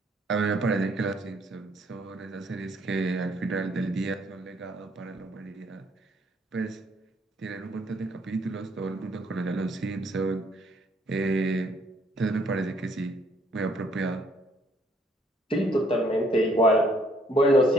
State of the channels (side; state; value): both; normal; correlation 0.66